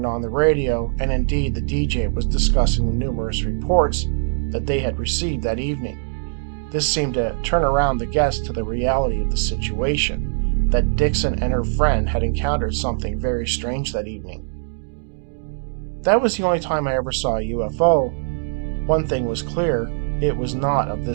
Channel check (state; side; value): silent; left; digital silence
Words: on the radio, and indeed the DJ was discussing the numerous reports that they had received that evening. This seemed to turn around the guests to the reality of the situation, that Dixon and her friend had encountered something very strange that evening. That was the only time I ever saw a UFO. One thing was clear, it was not of